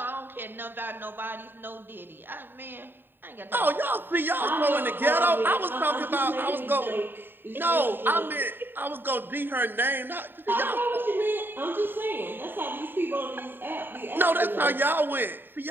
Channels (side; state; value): left; late; 0.096 ms